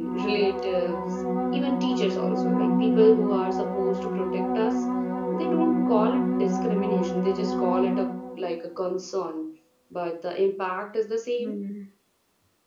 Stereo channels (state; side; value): identical; both; correlation 1.00